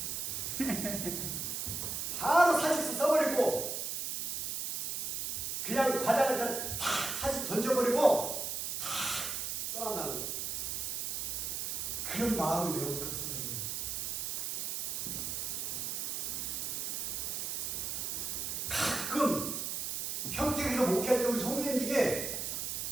바로 사직서 써버리고 그냥 과장을 다 사직 던져버리고 다 떠난다는 거예요. 그런 마음이 왜 없겠어요? 가끔 평택에서 목회할 때 우리 성도님 중에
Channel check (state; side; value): noise; right; hiss, 2 dB below the sound